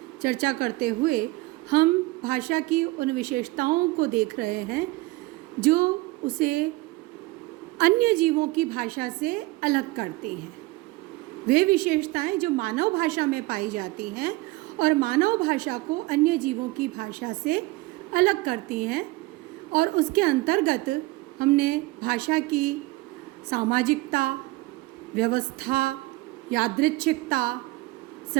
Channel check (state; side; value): quieter; left; 20.9 dB